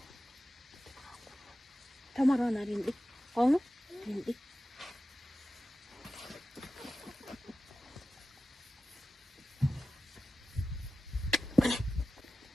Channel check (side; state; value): both; normal; correlation 0.94